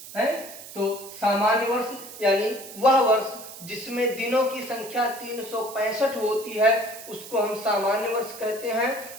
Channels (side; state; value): right; noise; hiss, 14 dB below the sound